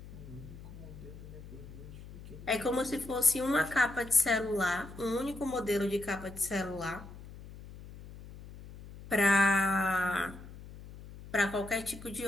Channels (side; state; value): left; noise; hum, 15 dB below the sound